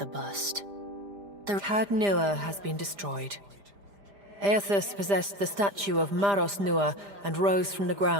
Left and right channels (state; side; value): late; left; 5.0 ms